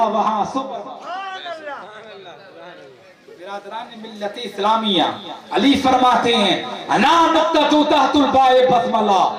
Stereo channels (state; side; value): identical; both; correlation 1.00